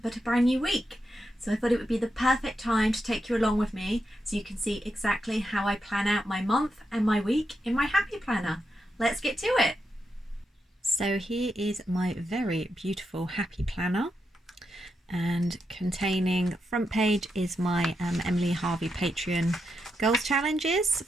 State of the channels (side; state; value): both; normal; correlation 0.85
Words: a brand new week. So I thought it would be the perfect time to take you along with me so you can see exactly how I plan out my month and my week in my Happy Planner. Let's get to it. So here is my very beautiful Happy Planner, and containing front page is my Emily Harvey Patreon goals challenges